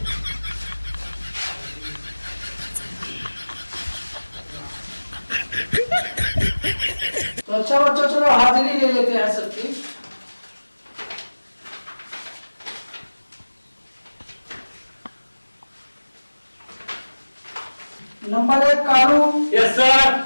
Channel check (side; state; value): both; inverted; correlation -1.00